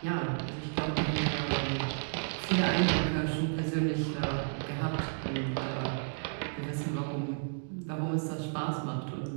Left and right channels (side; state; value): left; silent; digital silence